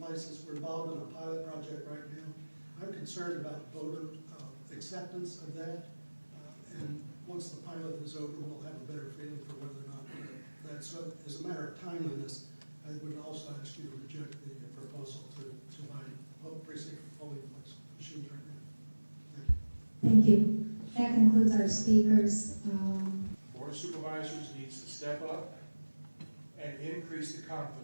we're involved in a pilot project right now. I'm concerned about voter acceptance of that. And once the pilot is over, we'll have a better feeling for whether or not that's, so as a matter of timeliness, I would also ask you to reject the proposal to buy precinct polling place machines right now. Thank you. Thank you. That concludes our speakers. Board of Supervisors needs to step up and increase the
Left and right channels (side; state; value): both; inverted; correlation -1.00